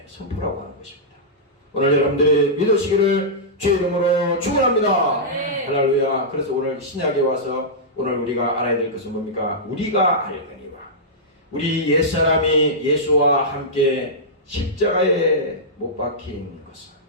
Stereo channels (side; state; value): both; normal; correlation -0.13